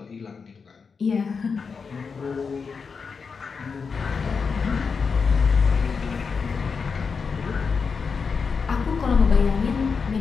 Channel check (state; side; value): quieter; right; 5.4 dB